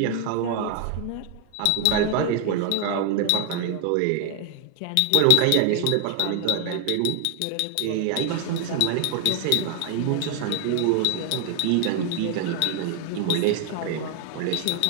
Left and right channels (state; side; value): different; both; correlation 0.00